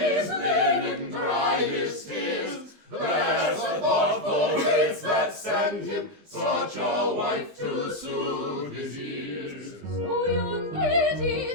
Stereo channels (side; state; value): left; late; 20 ms